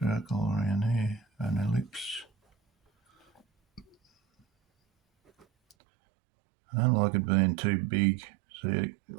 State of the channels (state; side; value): drops out; left; at 5.8 s